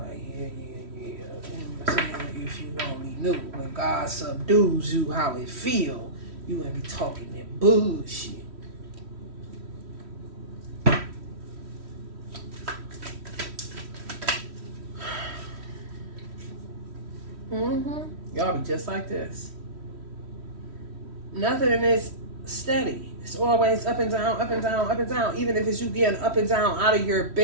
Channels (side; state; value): left; late; 3.1 ms